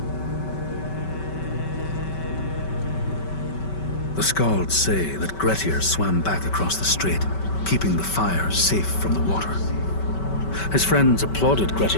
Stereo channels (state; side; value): late; right; 5.2 ms